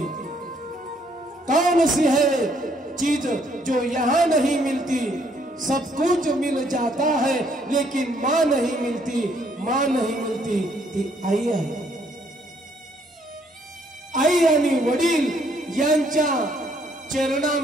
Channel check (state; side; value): normal; both; correlation 0.68